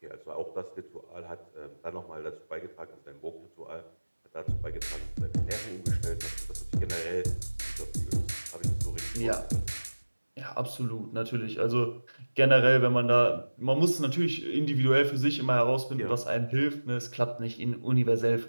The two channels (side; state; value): both; inverted; correlation -1.00